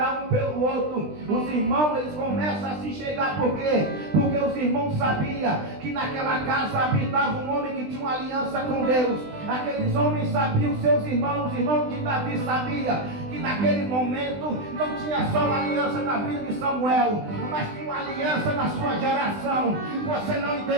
um pelo outro. Os irmãos eles começam a se chegar. Por quê? Porque os irmãos sabiam que naquela casa habitava um homem que tinha uma aliança com Deus. Aqueles homens sabiam, os seus irmãos, os irmãos de Davi sabiam que naquele momento não tinha só uma aliança na vida de Samuel, mas tinha uma aliança na sua geração. Você não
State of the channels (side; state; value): left; late; 20 ms